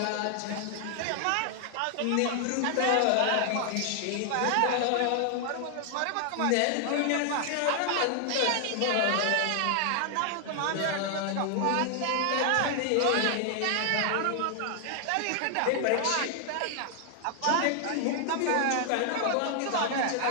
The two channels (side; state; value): both; different; correlation 0.00